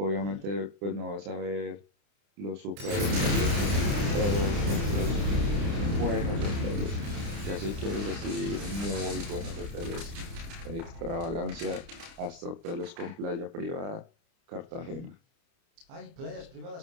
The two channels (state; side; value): late; left; 30 ms